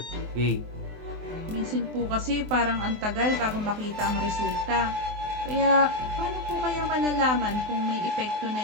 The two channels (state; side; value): late; left; 24 ms